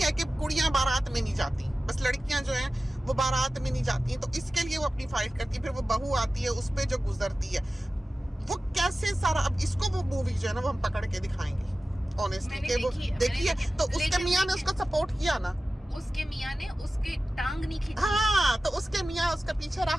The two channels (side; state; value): both; normal; correlation 0.95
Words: कि कुड़ियाँ बारात में नहीं जाती, बस लड़कियां जो हैं वो बारात में नहीं जाती हैं, तो इसके लिए वो अपनी फाइट करती है। फिर वो बहू आती है, उस पे जो गुजरती है वो कैसे सारा। अब इसको वो मूवी जो है ना वो हम पकड़ के दिखाएंगे ऑनेस्टली कि वो देखिए, तो उसके मियाँ ने उसको सपोर्ट किया ना, उसके मियाँ ने उसके टांग नहीं खींची। हाँ, तो उसके मियाँ उसका पीछे